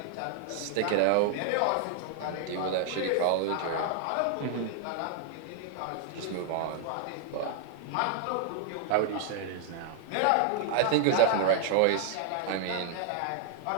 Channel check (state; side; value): different; both; correlation 0.00